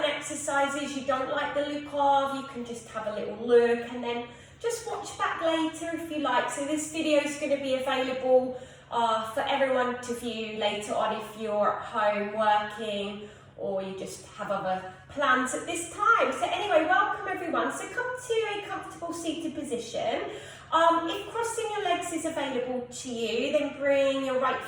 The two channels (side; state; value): both; identical; correlation 1.00